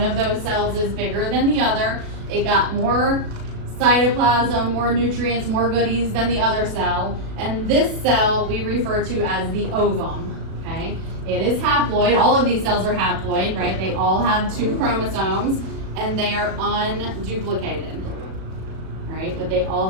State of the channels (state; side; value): late; left; 37 ms